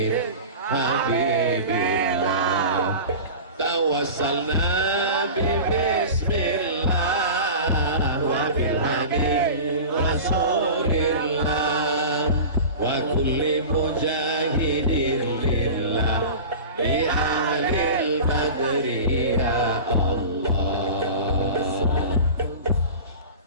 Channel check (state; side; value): inverted; both; correlation -0.34